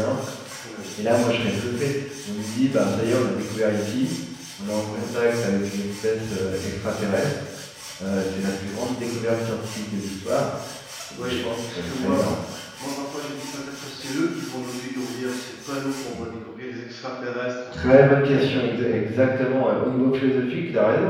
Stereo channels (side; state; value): both; identical; correlation 1.00